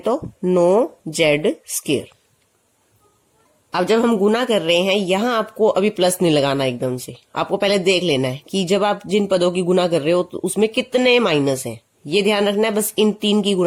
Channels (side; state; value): both; identical; correlation 1.00